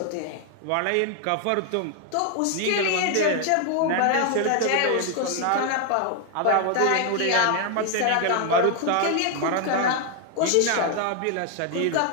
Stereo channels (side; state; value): both; different; correlation 0.00